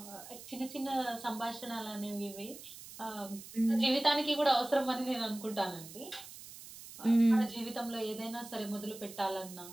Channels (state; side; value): noise; right; hiss, 15 dB below the sound